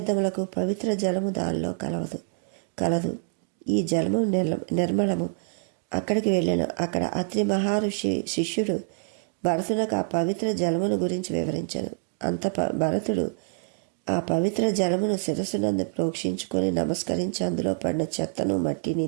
పవిత్ర జలము దానిలో కలదు. ఈ జలము నిర్మలము. అక్కడికి వెళ్ళాను. అక్కడ అత్రి మహర్షి శిష్యుడు భరతునకు ఆ పవిత్ర జలమును గురించి వివరించాను. భరతుడు ఆ పవిత్ర జలమును శిరస్సునందు ప్రోక్షించుకొని నమస్కరించి అందులో పడిన చెత్తను మట్టిని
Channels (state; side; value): silent; left; 61 dB below the other